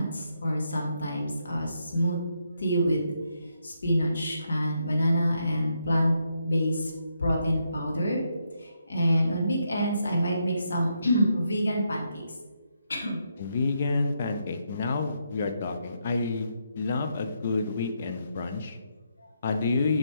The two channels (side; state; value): both; inverted; correlation -0.79